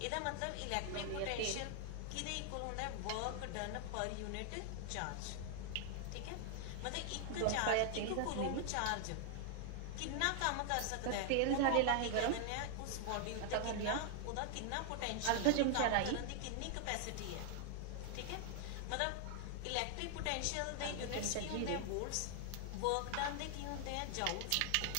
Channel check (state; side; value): different; both; correlation 0.00